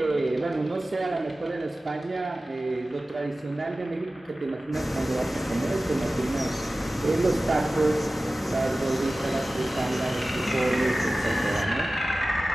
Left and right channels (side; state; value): both; normal; correlation 0.96